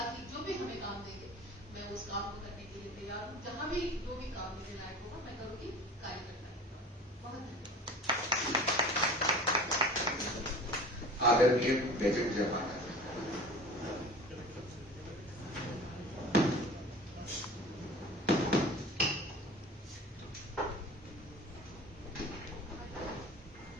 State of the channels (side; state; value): both; normal; correlation 0.40